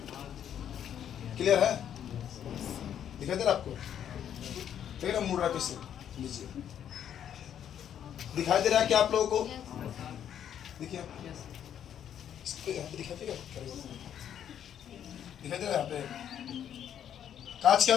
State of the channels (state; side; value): quieter; right; 9.6 dB